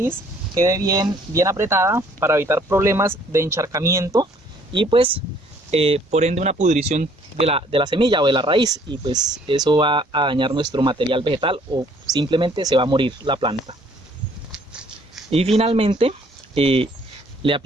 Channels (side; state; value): both; normal; correlation 0.60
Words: quede bien apretada para evitar problemas de encharcamiento y pues por ende una pudrición de la semilla o de la raíz, y pues eso va a dañar nuestro material vegetal o simplemente se va a morir la planta. Y finalmente le